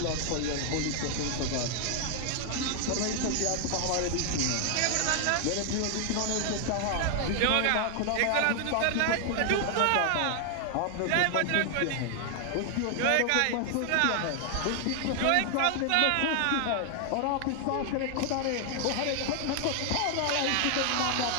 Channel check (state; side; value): different; both; correlation 0.00